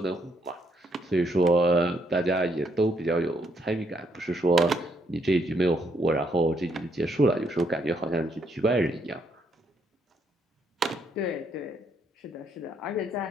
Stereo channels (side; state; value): both; normal; correlation 0.73